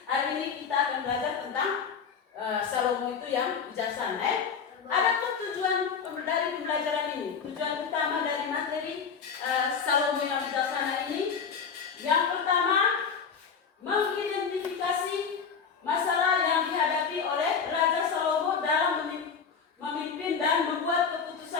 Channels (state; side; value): quieter; right; 6.2 dB